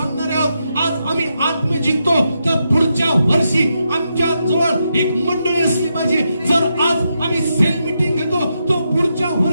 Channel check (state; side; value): inverted; both; correlation -0.83